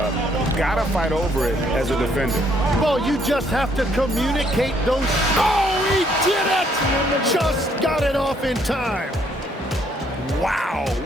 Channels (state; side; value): normal; both; correlation 0.68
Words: Gotta fight over it as a defender. Well, you just have to communicate those. Oh, he did it! Just got it off in time. Wow,